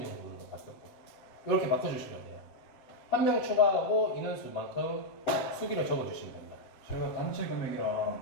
바뀌었고 이렇게 바꿔주시면 돼요. 한 명 추가하고 인원수만큼 수기를 적어주시면 됩니다. 저희가 단체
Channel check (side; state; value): right; late; 7.6 ms